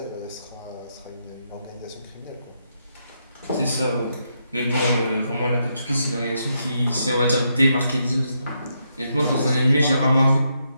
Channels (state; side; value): inverted; both; correlation -0.80